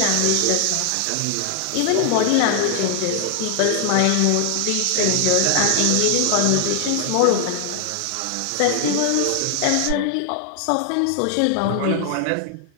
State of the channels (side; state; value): both; different; correlation 0.00